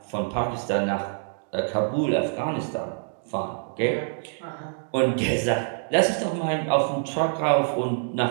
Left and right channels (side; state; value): left; silent; digital silence